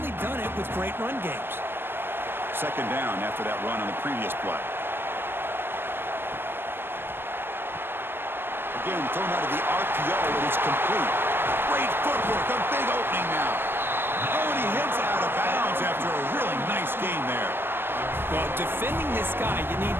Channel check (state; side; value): late; left; 0.10 ms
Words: done it with great run games. 2nd down after that run on the previous play. Again, thrown out of the RPO, and it's complete. Great footwork, a big opening now. Oh, and he hits out of bounds after a really nice game there. Well, defending this guy, you need